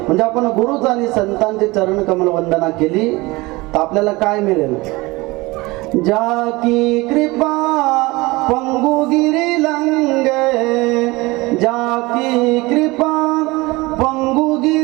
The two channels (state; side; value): quieter; left; 22.3 dB